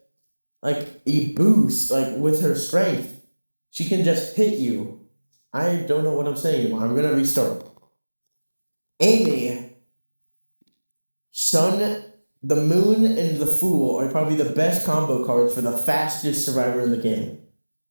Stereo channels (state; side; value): inverted; both; correlation -1.00